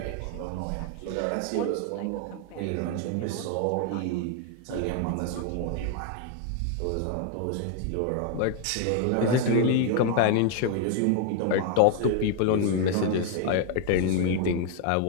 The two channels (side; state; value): both; different; correlation 0.00